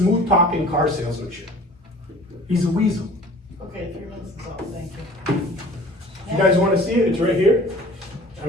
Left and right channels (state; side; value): normal; both; correlation 0.47